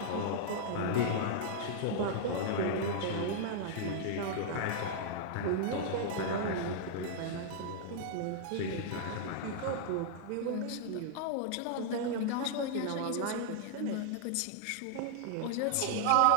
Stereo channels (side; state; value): both; different; correlation -0.01